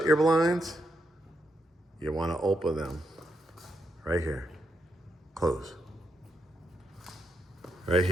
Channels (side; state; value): both; normal; correlation 0.81